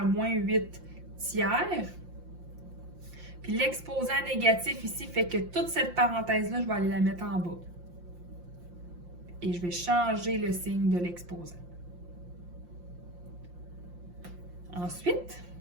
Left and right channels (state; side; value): late; left; 5.7 ms